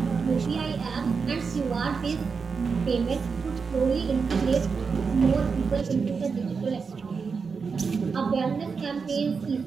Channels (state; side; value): quieter; left; 5.3 dB